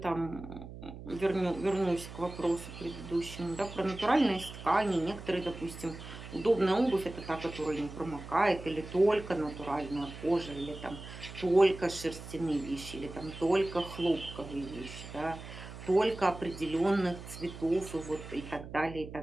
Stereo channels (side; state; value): right; noise; hum, 13 dB below the sound